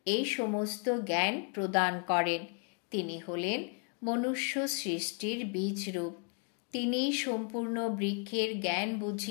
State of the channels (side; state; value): right; quieter; 38.4 dB